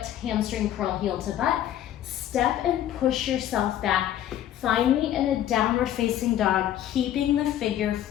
hamstring curl, heel to butt. Step and push yourself back. Find me in a downward facing dog, keeping the figure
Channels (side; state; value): right; quieter; 11.7 dB